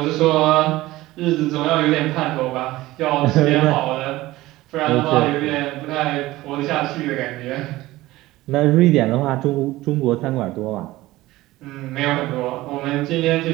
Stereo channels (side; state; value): left; quieter; 17.7 dB